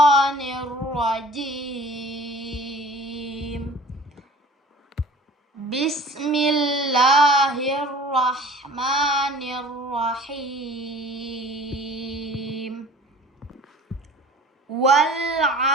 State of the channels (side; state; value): both; normal; correlation 0.45